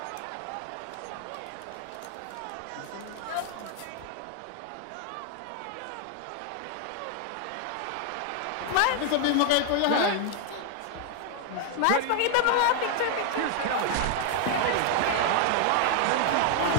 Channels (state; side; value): different; both; correlation 0.00